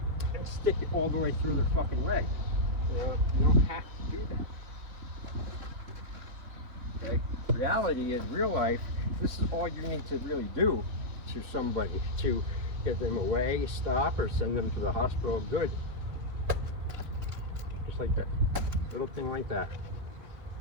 and stick it all the way through their fucking leg. You don't have to do that. Okay? Reality is, real life, this is all you need to really do to somebody to get them away, stop, or send them to the hospital. Good. Just like that. Little thing like that.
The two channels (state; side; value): late; left; 3.4 ms